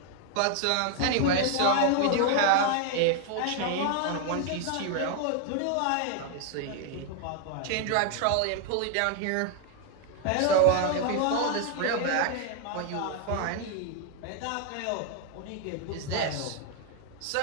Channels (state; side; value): different; both; correlation 0.00